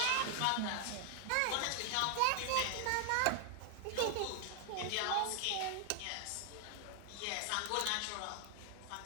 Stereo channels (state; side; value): different; both; correlation 0.00